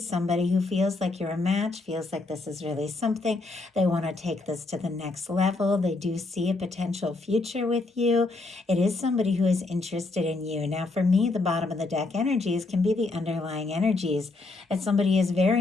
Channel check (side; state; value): right; quieter; 3.3 dB